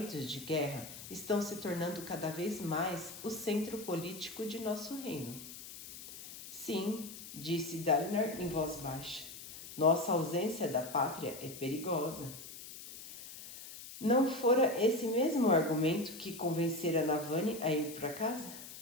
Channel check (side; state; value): left; noise; hiss, 13 dB below the sound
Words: de guerra estão se tornando cada vez mais o centro político de nosso reino. Sim, disse Dalinar em voz baixa. Nossa ausência da pátria é perigosa. Não fora esse mesmo argumento que convencera Navani a ir para casa?